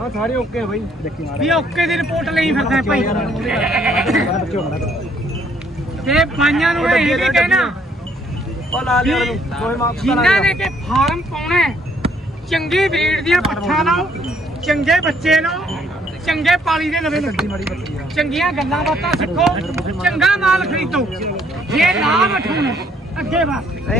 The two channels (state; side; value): normal; both; correlation 0.66